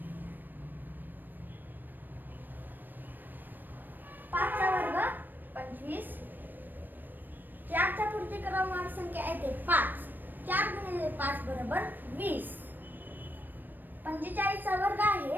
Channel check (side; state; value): left; late; 0.091 ms